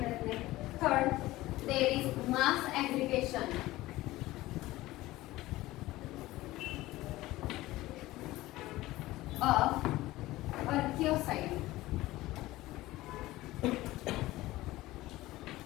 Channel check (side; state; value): right; quieter; 17.6 dB